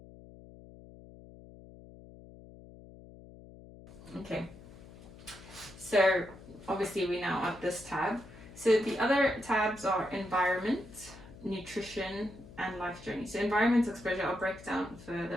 Okay. So obviously we're now at this tab. So the other tabs are environment, nutrition, and life journey. So environment exposure I'll break down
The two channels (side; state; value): left; noise; hum, 18 dB below the sound